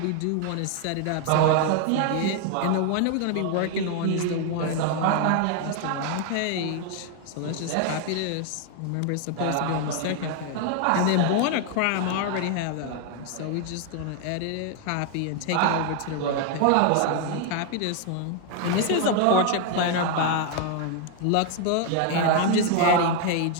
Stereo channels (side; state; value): both; different; correlation 0.00